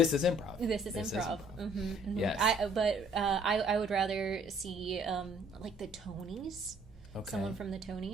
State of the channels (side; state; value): both; normal; correlation 0.60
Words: is improv. Yes. I would rather see like the Tonys. Okay. Someone from the